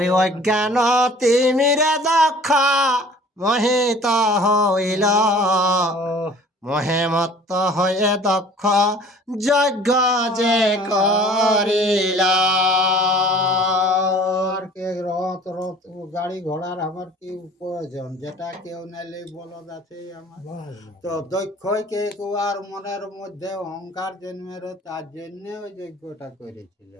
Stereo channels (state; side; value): normal; both; correlation 0.49